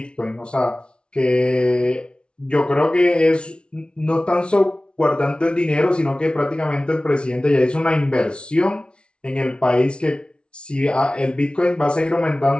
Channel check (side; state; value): right; late; 0.057 ms